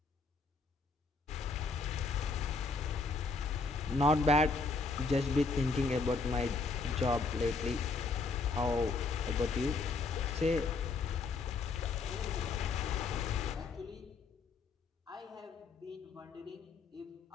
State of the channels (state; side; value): quieter; right; 4.1 dB